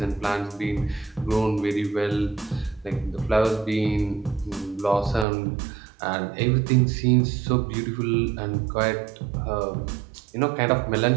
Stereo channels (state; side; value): drops out; left; at 5.2 s